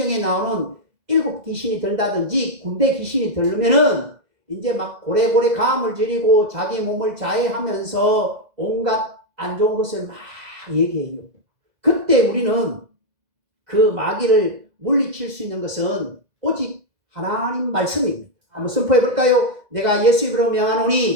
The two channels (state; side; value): late; left; 2.0 ms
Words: 나오는 7 귀신이 들다든지 군대 귀신이 들면은 이제 막 고래고래 가음을 지르고 자기 몸을 자해하면서 온갖 안 좋은 것을 막 얘기해요. 그때 우리는 그 마귀를 물리칠 수 있는 것은 오직 하나님 말씀입니다. 한번 선포해 볼까요? 내가 예수 이름으로